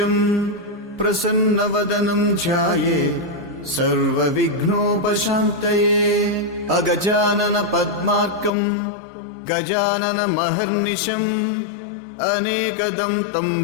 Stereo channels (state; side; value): drops out; right; at 8.5 s